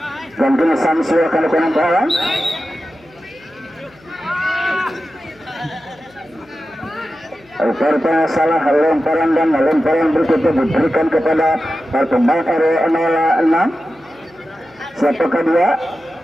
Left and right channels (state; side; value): noise; left; hum, 29 dB below the sound